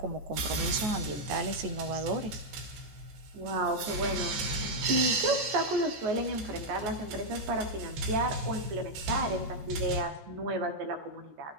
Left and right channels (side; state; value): left; late; 14 ms